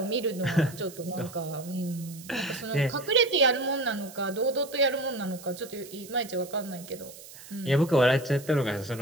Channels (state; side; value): noise; right; hiss, 17 dB below the sound